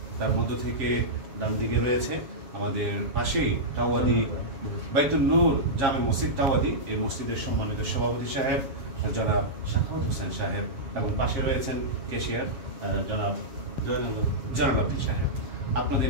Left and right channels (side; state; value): left; late; 7.2 ms